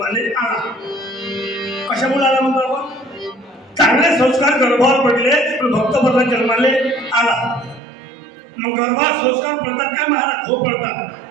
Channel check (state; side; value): drops out; left; at 7.8 s